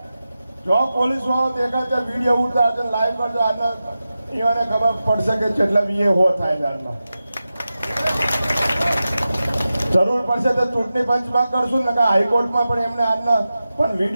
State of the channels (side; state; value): both; inverted; correlation -0.93